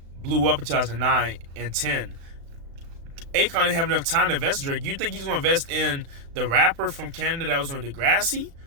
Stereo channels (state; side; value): late; left; 36 ms